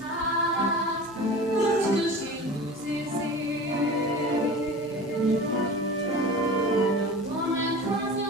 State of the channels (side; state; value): both; normal; correlation 0.36